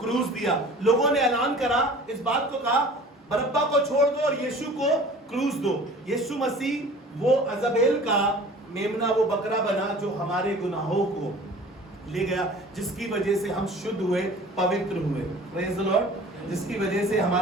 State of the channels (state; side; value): normal; both; correlation 0.44